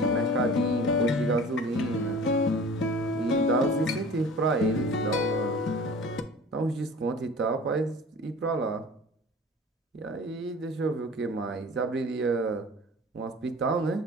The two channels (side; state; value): both; normal; correlation 0.42